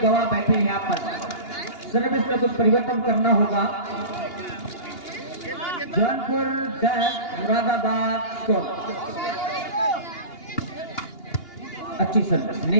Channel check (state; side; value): late; right; 2.8 ms